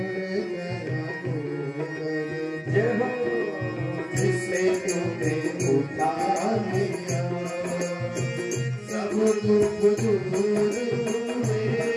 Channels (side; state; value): both; identical; correlation 1.00